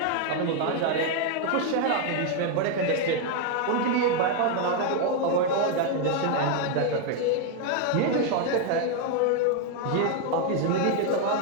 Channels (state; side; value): different; both; correlation 0.01